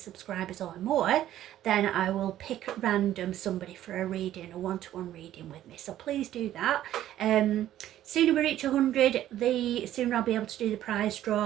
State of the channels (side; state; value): left; quieter; 12.6 dB